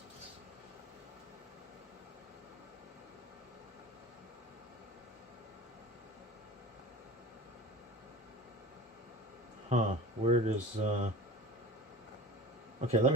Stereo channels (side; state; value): both; normal; correlation 0.39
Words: Huh, where does, okay, let